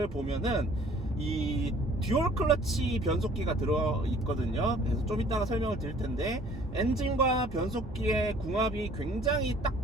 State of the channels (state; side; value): normal; both; correlation 0.54